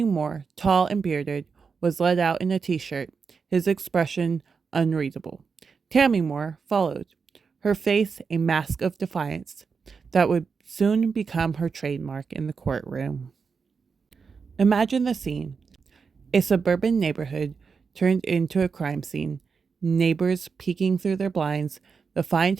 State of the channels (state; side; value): quieter; left; 5.4 dB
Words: Moorer, tall and bearded, was led out in a t-shirt, his expression unreadable. Tammy Moorer followed, her face a mask of defiance that would soon become her trademark in the courtroom. Imagine the scene. A suburban neighborhood turned into a crime scene, neighbors peeking through their blinds. The Find